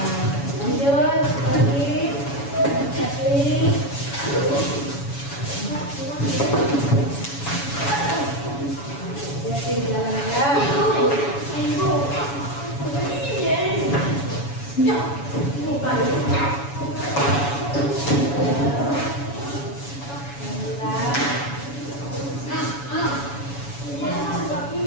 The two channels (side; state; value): right; late; 7.1 ms